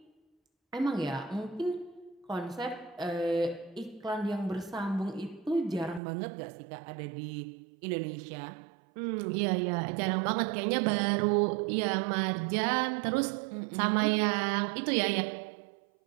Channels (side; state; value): left; drops out; at 6.0 s